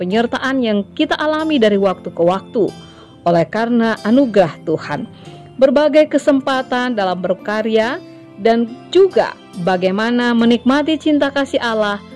yang kita alami dari waktu ke waktu oleh karena anugerah Tuhan. Berbagai kesempatan dalam berkarya dan juga bagaimana menikmati cinta kasih Allah,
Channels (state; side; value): identical; both; correlation 1.00